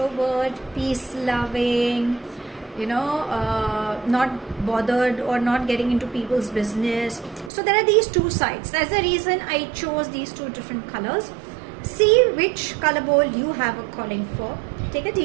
peace-loving, not bothered or not getting into people's business. So there are these two sides. That's the reason I chose these two different colors. See which color bowl you have a calling for. Take a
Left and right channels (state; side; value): drops out; left; at 7.5 s